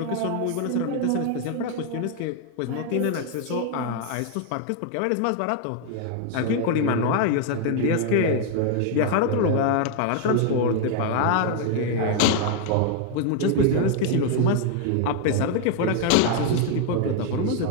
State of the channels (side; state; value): both; different; correlation 0.00